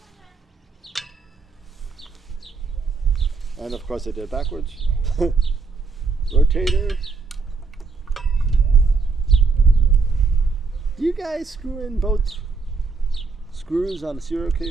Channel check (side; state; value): left; quieter; 4.5 dB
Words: And of course I did it backwards. Rotator. Do you guys screw in both screws on a serial